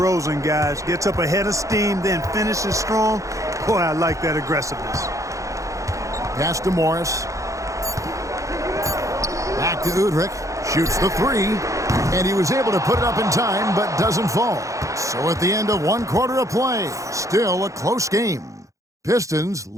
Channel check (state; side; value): late; left; 0.15 ms